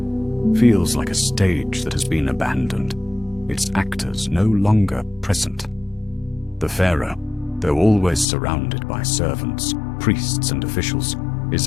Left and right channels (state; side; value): drops out; right; at 8.2 s